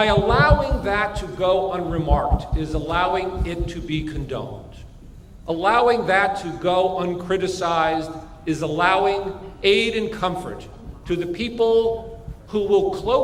allowing that to go unremarked is allowing it to be condoned. Allowing that to go uncriticized is allowing aid and comfort to the people who will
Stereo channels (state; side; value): identical; both; correlation 1.00